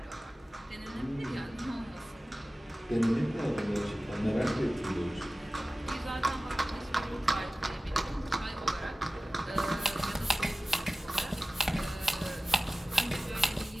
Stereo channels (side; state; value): both; normal; correlation 0.96